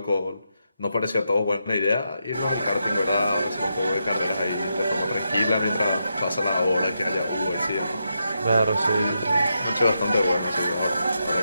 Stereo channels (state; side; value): inverted; both; correlation -0.84